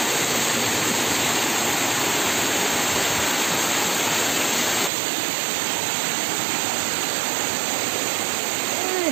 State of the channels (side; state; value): left; drops out; at 4.9 s